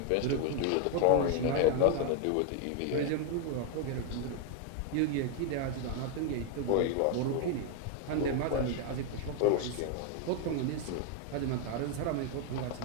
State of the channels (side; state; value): both; different; correlation 0.01